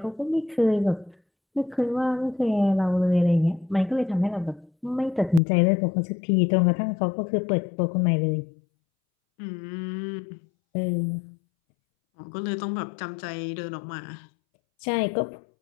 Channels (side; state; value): right; drops out; at 5.4 s